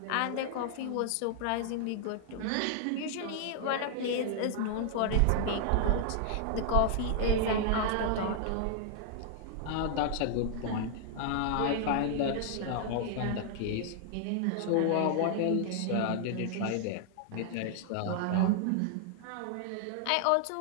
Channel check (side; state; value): both; different; correlation -0.01